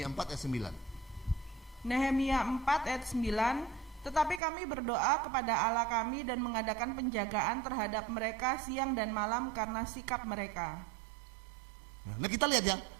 4 ayat 9. Nehemia 4 ayat 9, tetapi kami berdoa kepada Allah kami dan mengadakan penjagaan terhadap mereka siang dan malam karena sikap mereka. Nah, kita lihat ya,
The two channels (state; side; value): drops out; left; at 4.4 s